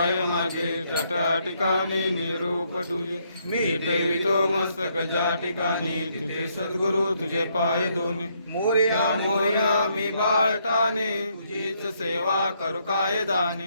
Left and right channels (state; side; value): inverted; both; correlation -0.73